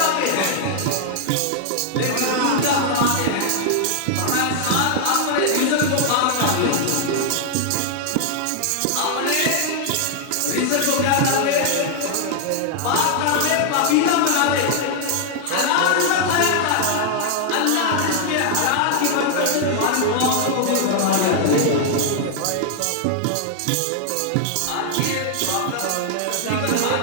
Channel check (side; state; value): both; different; correlation 0.00